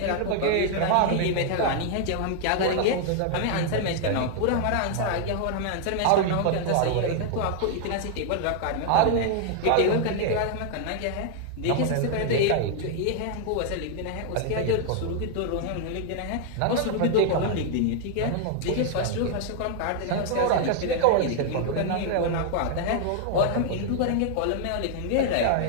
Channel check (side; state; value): both; different; correlation 0.00